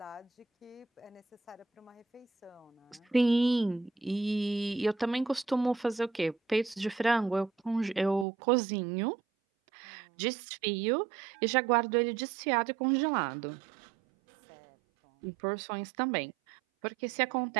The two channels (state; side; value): drops out; left; at 8.2 s